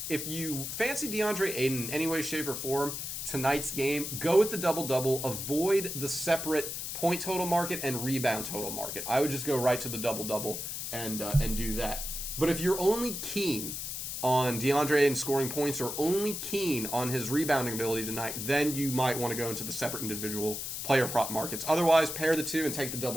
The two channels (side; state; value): left; noise; hiss, 5 dB below the sound